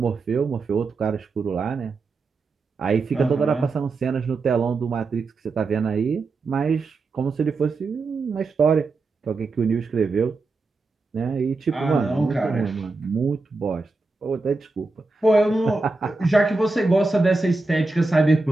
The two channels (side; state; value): left; quieter; 3.6 dB